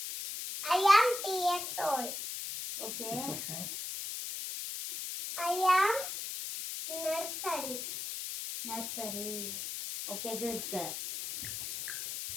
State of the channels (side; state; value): left; noise; hiss, 5 dB below the sound